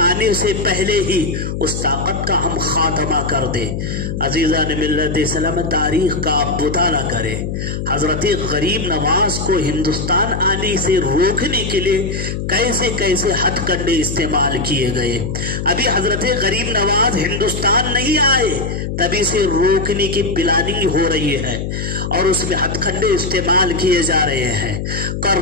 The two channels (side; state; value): left; noise; hum, 4 dB below the sound